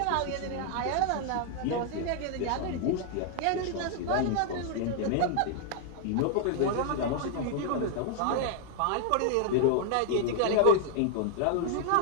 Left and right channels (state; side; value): different; both; correlation 0.00